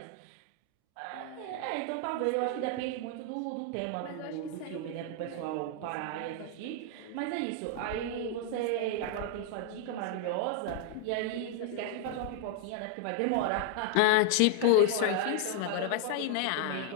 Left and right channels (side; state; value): both; different; correlation 0.00